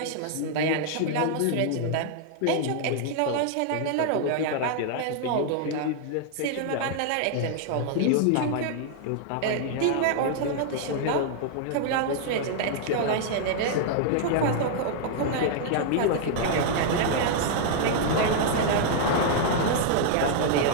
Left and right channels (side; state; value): both; different; correlation -0.01